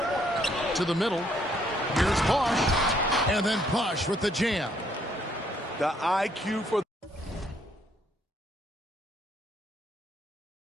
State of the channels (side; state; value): both; normal; correlation 0.69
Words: To the middle. Here's Bosch. And then Bosch with the jam. The IQ for